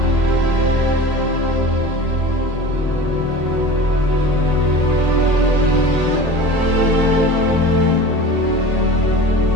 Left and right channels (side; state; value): left; late; 1.8 ms